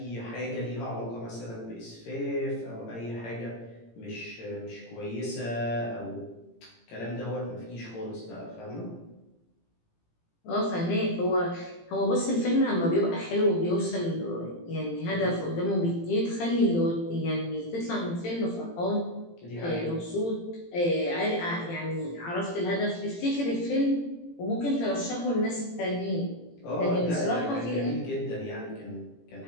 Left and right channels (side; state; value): right; late; 18 ms